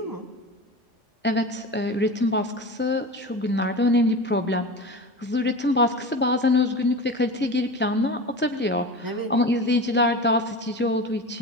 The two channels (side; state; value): both; normal; correlation 0.30